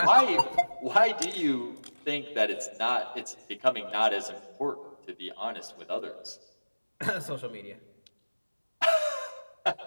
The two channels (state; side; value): inverted; both; correlation -1.00